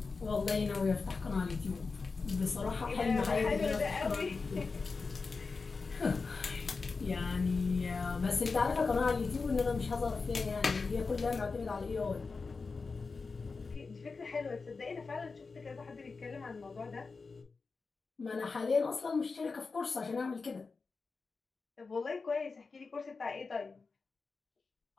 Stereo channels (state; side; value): quieter; right; 4.4 dB